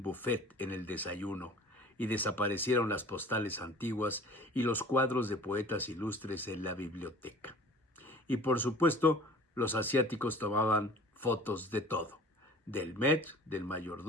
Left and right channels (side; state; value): both; normal; correlation 0.45